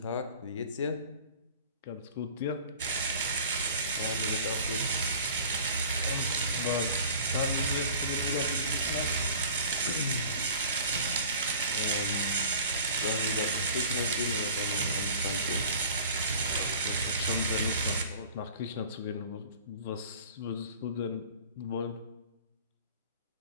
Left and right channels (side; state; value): both; inverted; correlation -0.43